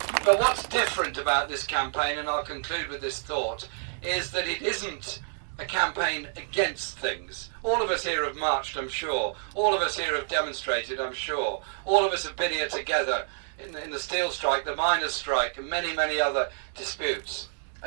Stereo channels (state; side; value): silent; left; digital silence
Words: But what's different about this campaign, and I'll conclude with this thought, is that it isn't a campaign against things. All of us here have marched, I'm sure. All of us here have demonstrated, I'm sure. All of us have been here together in the steel strike, the miners' strike, and many, many other disputes